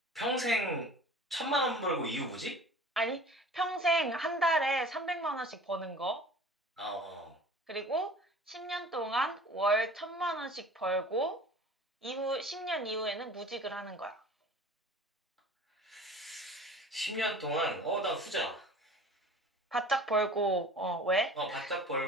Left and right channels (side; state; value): both; normal; correlation 0.43